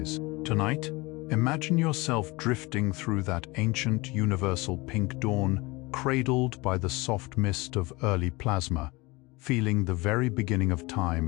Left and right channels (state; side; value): quieter; right; 23.6 dB